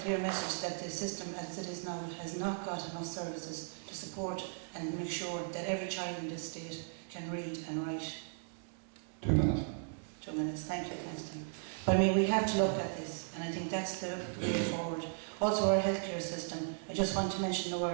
clear message that the system as it is now has not got enough services to support and make sure that every child in this state can read and write. 2 minutes. 2 minutes, thank you, thanks Tim. But I mean, we have to look at this, and I think that's the way forward. Also our healthcare system, I just want to mention the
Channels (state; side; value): silent; left; digital silence